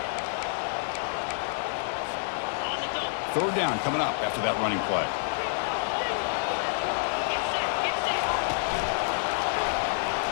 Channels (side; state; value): right; silent; 59 dB below the other